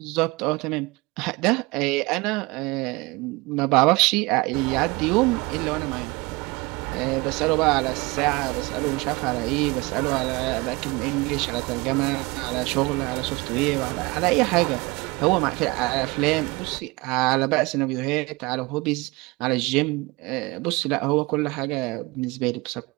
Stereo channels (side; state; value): left; quieter; 24.0 dB